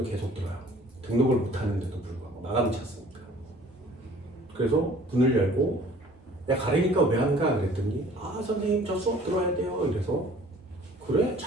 계속 들어요. 등록을 못하는데도 불구하고 마감이 찼으니까. 그래서 문을 열고 야 가래니까 왜 안 가? 그랬더니 아 선생님 저 수업 들어야 돼요. 이래서 그래?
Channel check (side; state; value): both; normal; correlation 0.52